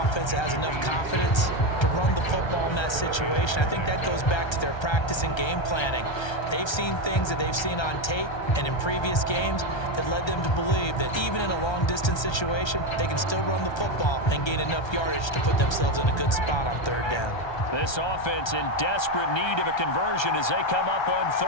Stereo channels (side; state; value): right; late; 1.3 ms